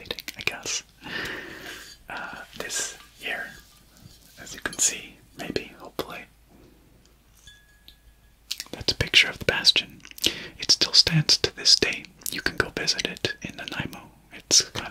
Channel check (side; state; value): both; identical; correlation 1.00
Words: I guess. This here, as you can see, maybe, hopefully, that's a picture of the Bastion. It still stands to this day. You can go visit it in Nanaimo. It's